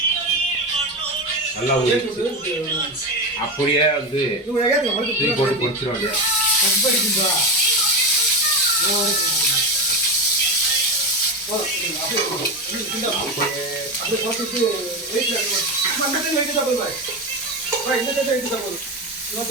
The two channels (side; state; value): both; normal; correlation 0.17